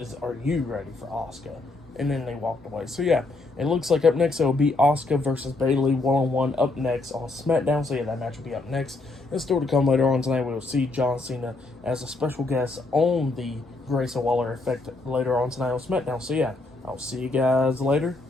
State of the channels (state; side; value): quieter; right; 3.3 dB